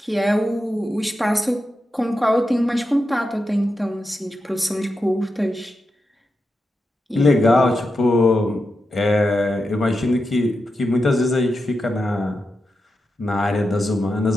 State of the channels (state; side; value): normal; both; correlation 0.88